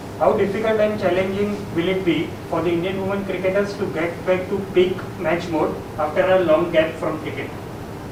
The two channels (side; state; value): both; identical; correlation 1.00